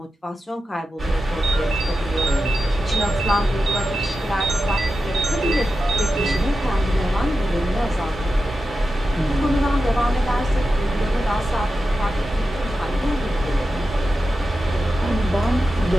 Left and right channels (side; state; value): both; normal; correlation 0.91